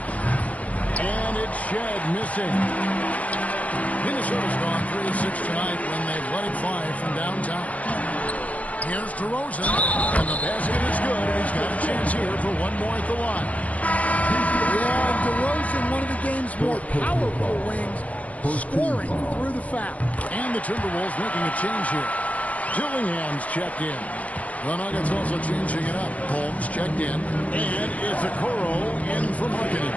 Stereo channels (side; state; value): right; late; 0.069 ms